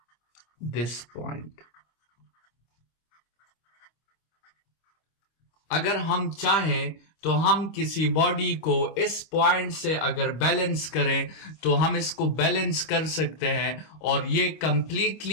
this point। अगर हम चाहें तो हम किसी बॉडी को इस पॉइंट से अगर बैलेंस करें तो हम इसको बैलेंस कर सकते हैं और ये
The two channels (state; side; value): late; right; 25 ms